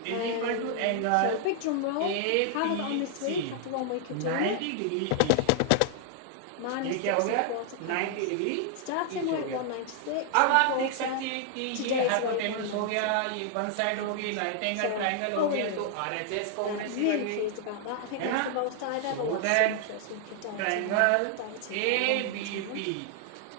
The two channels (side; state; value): both; different; correlation 0.00